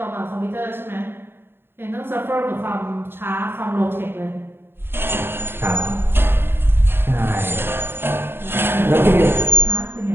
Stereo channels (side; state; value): left; late; 0.11 ms